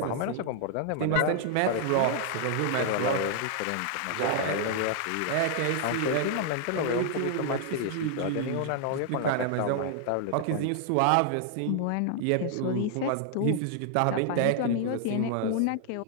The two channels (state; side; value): different; both; correlation 0.00